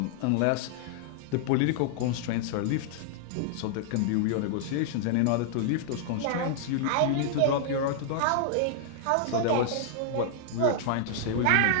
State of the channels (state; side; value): different; both; correlation -0.01